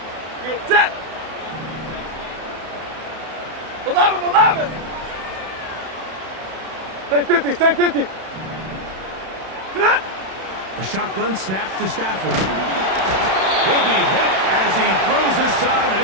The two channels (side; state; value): left; late; 31 ms